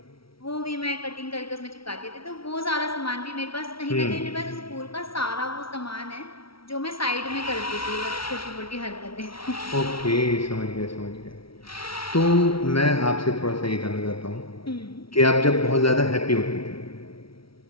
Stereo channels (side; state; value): right; late; 0.75 ms